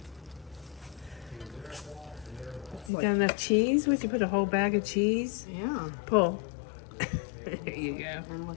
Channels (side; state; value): right; drops out; at 2.9 s